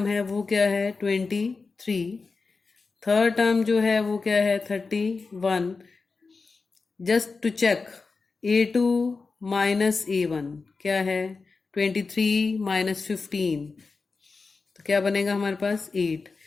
है वो क्या है? 23. थर्ड टर्म जो है वो क्या है? 31. Just to check A2 minus A1 क्या है? 23 माइनस 15. तो क्या बनेगा हमारे पास? 8.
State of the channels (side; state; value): right; quieter; 4.3 dB